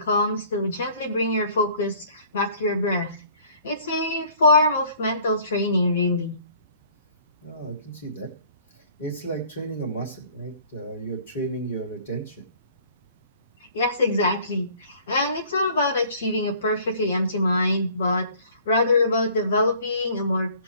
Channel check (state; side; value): inverted; both; correlation -0.54